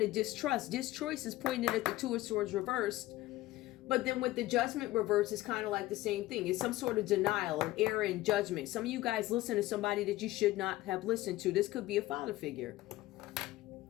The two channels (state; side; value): quieter; right; 17.2 dB